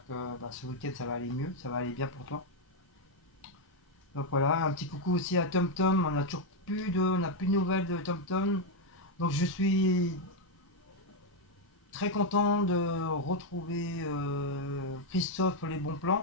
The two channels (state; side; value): normal; both; correlation 0.02